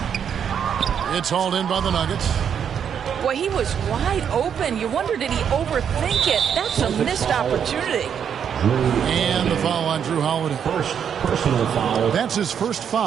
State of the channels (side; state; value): left; quieter; 8.1 dB